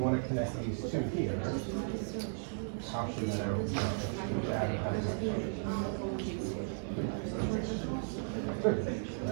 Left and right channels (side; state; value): left; silent; 54 dB below the other